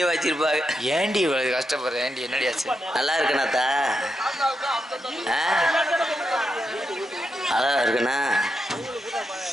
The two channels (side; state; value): both; normal; correlation 0.85